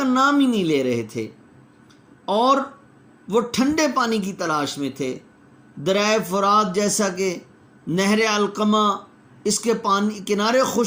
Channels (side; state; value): both; identical; correlation 1.00